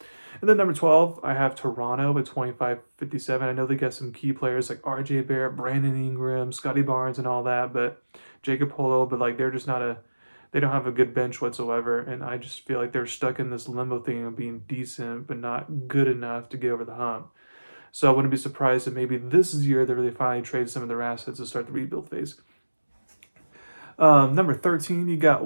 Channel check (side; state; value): both; inverted; correlation -1.00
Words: And then number 12, I have Toronto at 25-57. I know they got some key players like RJ Barrett, Brandon Ingram, Scotty Barnes, and all that, but Jacob Polo, but they're just they don't have a good bench whatsoever, and I just feel like they're stuck in this limbo thing of being decent but not good enough to get over the hump. So I wouldn't be surprised if maybe this is the year that they finally trade some of their assets to start the rebuild phase. Number 13, you got